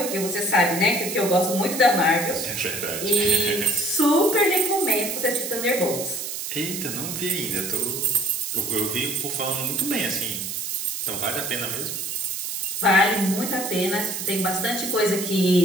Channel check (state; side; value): noise; right; hiss, 5 dB below the sound